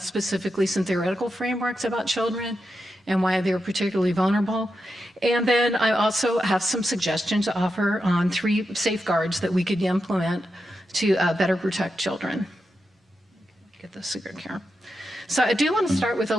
specifically some theoretical frameworks about children and why they're particularly vulnerable. And then I also have some suggestions to offer on 3 safeguards that we could implement to better protect children. Get this cigarette here. So I do want to start with a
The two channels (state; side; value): normal; both; correlation 0.88